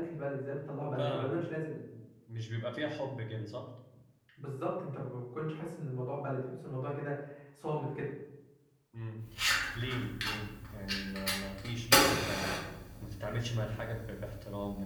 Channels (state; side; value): identical; both; correlation 1.00